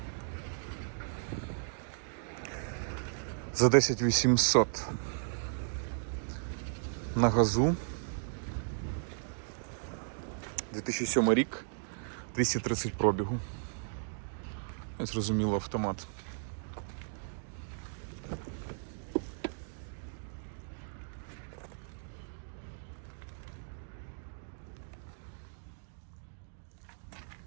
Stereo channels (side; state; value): left; silent; digital silence